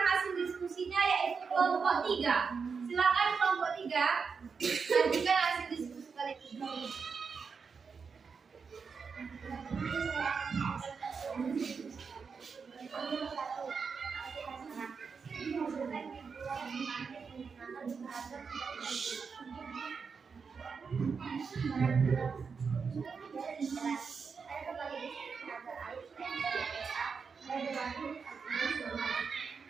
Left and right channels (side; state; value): left; quieter; 5.5 dB